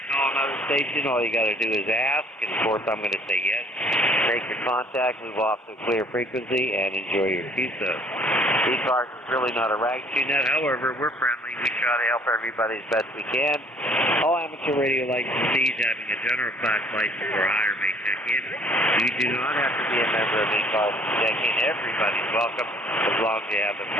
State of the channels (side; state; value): both; normal; correlation 0.57